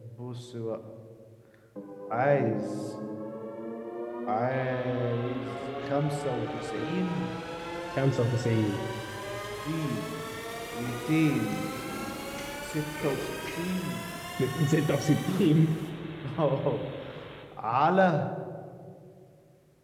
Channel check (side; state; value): both; identical; correlation 1.00